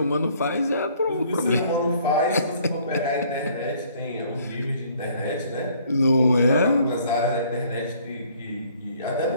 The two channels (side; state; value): both; inverted; correlation -0.60